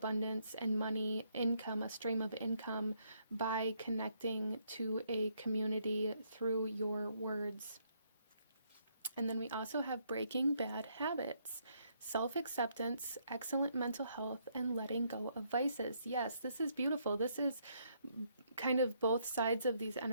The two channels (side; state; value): both; inverted; correlation -0.72